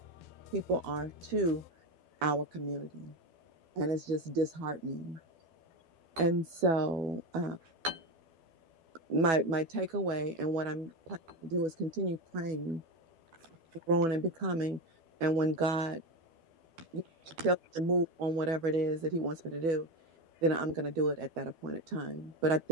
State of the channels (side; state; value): left; late; 12 ms